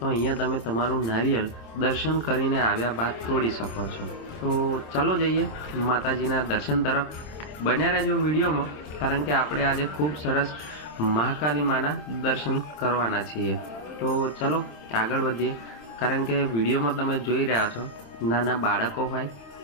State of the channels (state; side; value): late; right; 26 ms